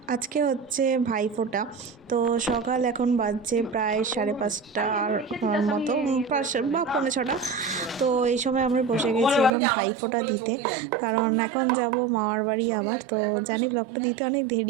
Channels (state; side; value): drops out; left; at 9.5 s